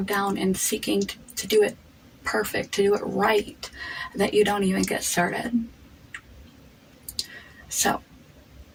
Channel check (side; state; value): both; identical; correlation 1.00